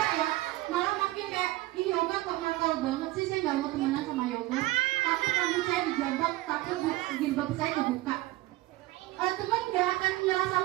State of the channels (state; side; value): quieter; left; 18.3 dB